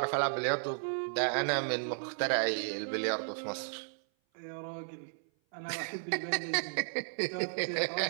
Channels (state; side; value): silent; left; 55 dB below the other